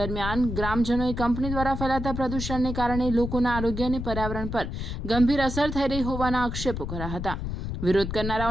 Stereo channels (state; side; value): noise; left; rumble, 5 dB below the sound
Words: ગ્રામજનોએ કંપની દ્વારા ફેલાતા પ્રદૂષણને કારણે લોકોના આરોગ્ય અને પર્યાવરણ પર ગંભીર અસર થઈ રહી હોવાના આક્ષેપો કર્યા હતા। વિરોધ